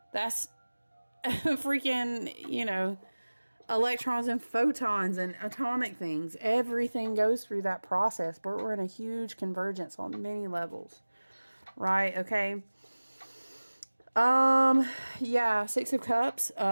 That's freaking, electrons and photons and atomic things. Everything goes through that process, but we're in a huge convergence on many levels. Right? Okay. Yeah, Six of Cups,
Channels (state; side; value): inverted; both; correlation -1.00